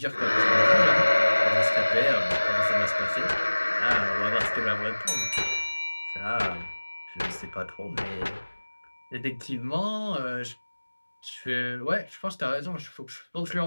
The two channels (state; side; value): inverted; both; correlation -1.00